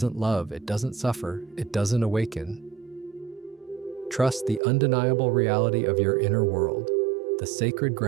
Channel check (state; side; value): drops out; left; at 4.6 s